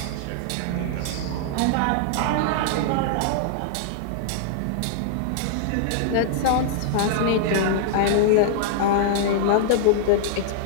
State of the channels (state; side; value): different; both; correlation -0.01